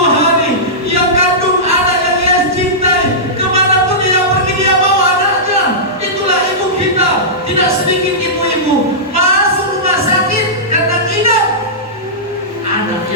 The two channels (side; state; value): both; normal; correlation -0.15